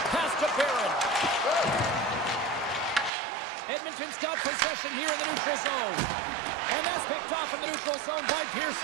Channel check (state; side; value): drops out; left; at 3.1 s